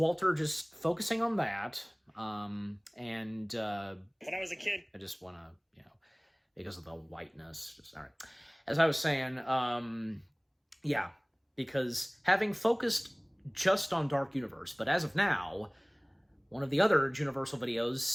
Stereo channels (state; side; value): identical; both; correlation 1.00